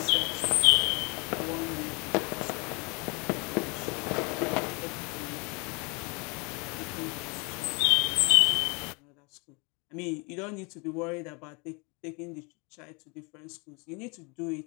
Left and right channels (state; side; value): quieter; right; 30.7 dB